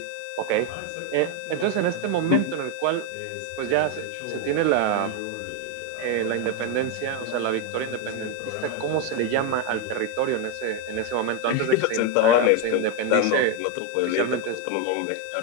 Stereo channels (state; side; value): different; both; correlation 0.02